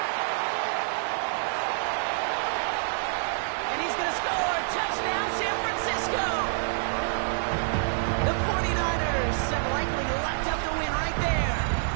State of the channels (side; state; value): left; silent; 60 dB below the other